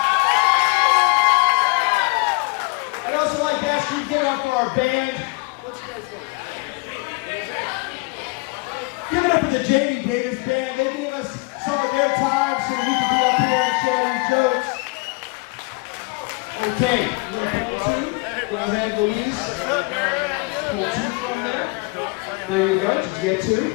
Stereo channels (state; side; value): quieter; right; 28.1 dB